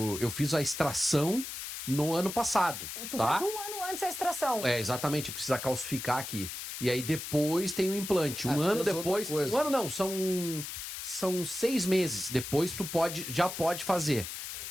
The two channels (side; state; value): left; noise; hiss, 7 dB below the sound